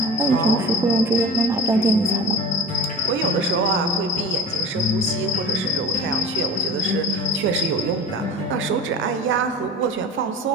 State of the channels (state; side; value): normal; both; correlation 0.37